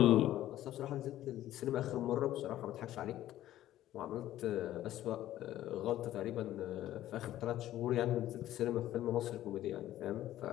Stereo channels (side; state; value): right; quieter; 13.5 dB